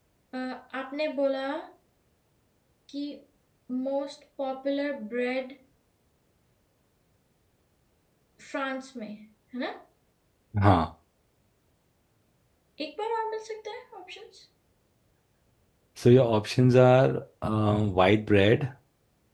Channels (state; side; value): identical; both; correlation 1.00